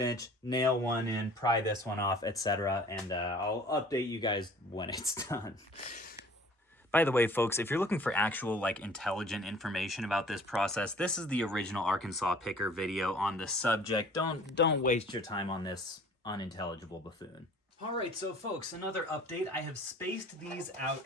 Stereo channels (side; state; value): both; normal; correlation 0.50